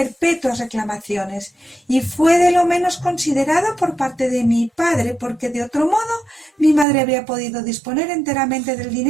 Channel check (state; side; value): drops out; left; at 6.9 s